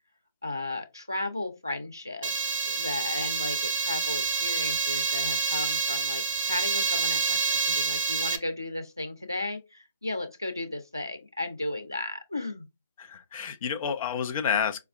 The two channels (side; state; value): both; inverted; correlation -0.46